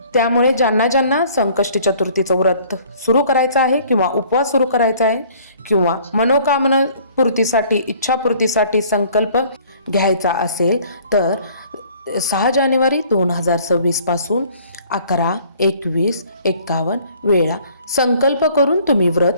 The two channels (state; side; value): inverted; both; correlation -0.55